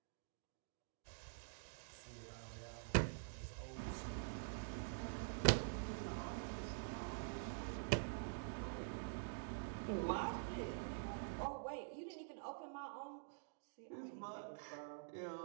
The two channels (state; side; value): silent; left; digital silence